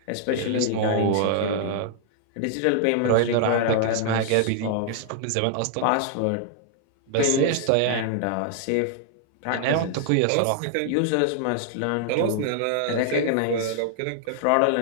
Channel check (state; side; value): different; both; correlation -0.01